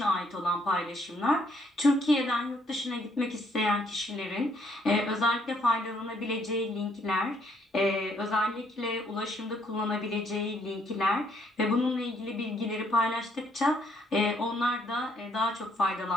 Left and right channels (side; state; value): both; normal; correlation 0.68